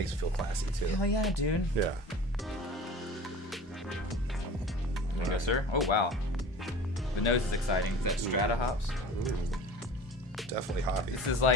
it feel classy too. Hell yeah, dude. Yeah. There you go, sir. Oh wow. The nose is exciting. Is that Strata hops? Ooh. Definitely hoppy. This is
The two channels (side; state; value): both; normal; correlation 0.39